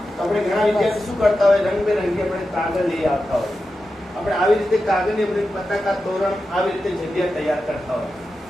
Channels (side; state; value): both; normal; correlation 0.91